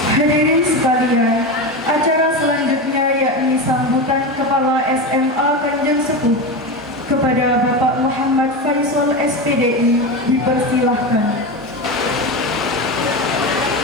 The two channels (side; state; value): both; normal; correlation 0.20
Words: Hadirin sekalian, acara selanjutnya yakni sambutan Kepala SMA Kanjeng Sepuh kepada Bapak Muhammad Faisal SPDI dipersilahkan.